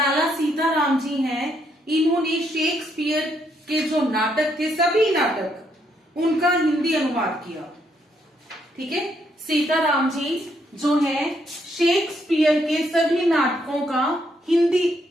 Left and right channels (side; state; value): both; normal; correlation 0.74